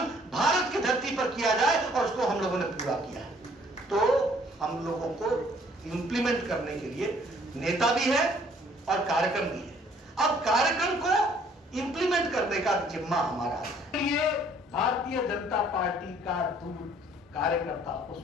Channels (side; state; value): both; normal; correlation 0.60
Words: भारत की धरती पर किया जाए और उसको हम लोगों ने पूरा किया है। तो हम लोगों को इंप्लीमेंट करने के लिए नेता भी है और कार्यक्रम भी है। अब कार्यक्रम को इंप्लीमेंट करने का जिम्मा हमारा है। ये भारतीय जनता पार्टी का दूर कार्यकर्ता,